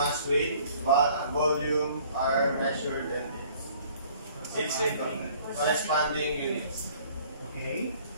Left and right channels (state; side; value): inverted; both; correlation -0.56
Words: weight, volume are measured and its corresponding units. Okay.